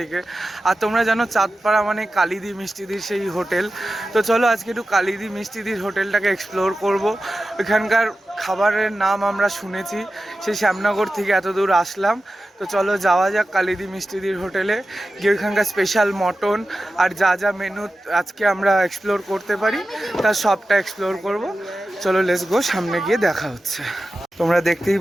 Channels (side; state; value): both; normal; correlation 0.94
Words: আর তোমরা জানো চাঁদপাড়া মানে কালিদি মিষ্টিদির সেই হোটেল। তো চলো আজকে একটু কালিদি মিষ্টিদির হোটেলটাকে এক্সপ্লোর করব। ওইখানকার খাবারের নাম আমরা শুনেছি, সেই শ্যামনগর থেকে এত দূর আসলাম। তো চলো যাওয়া যাক কালিদি মিষ্টিদির হোটেলে, গিয়ে ওইখানকার স্পেশাল মটন আর যা যা মেনু আজকে আমরা এক্সপ্লোর করতে পারি তার সবটা এক্সপ্লোর করব। চলো লেটস গো, সামনে গিয়ে দেখা হচ্ছে। তোমরা দেখতেই